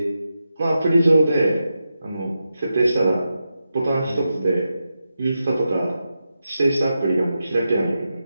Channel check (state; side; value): inverted; both; correlation -0.89